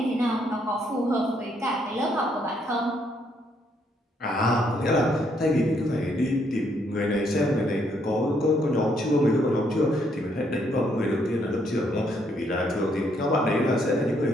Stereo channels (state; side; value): normal; both; correlation 0.72